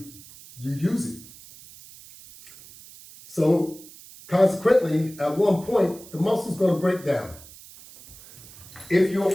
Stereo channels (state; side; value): noise; right; hiss, 19 dB below the sound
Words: you use it. So consequently, at one point, the muscle's going to break down. If you're